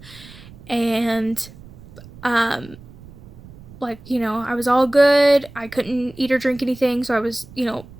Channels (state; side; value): noise; right; rumble, 20 dB below the sound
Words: and I was all good. I couldn't eat or drink anything, so I was,